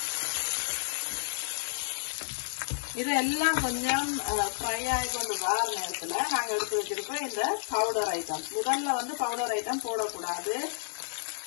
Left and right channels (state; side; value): silent; right; 57 dB below the other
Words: இதெல்லாம் கொஞ்சம் ஃப்ரை ஆகி கொண்டு வர நேரத்துல நாங்க எடுத்து வச்சிருக்கோம் இந்த பவுடர் ஐட்டம். முதல்ல வந்து பவுடர் ஐட்டம் போடக்கூடாது.